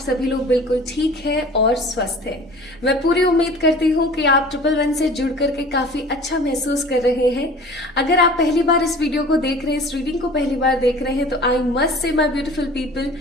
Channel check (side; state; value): both; normal; correlation 0.43